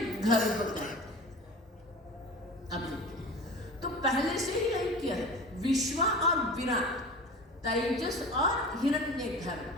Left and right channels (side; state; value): both; normal; correlation 0.36